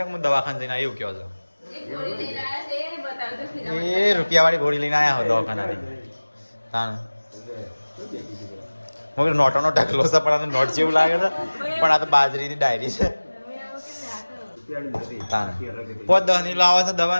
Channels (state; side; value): inverted; both; correlation -1.00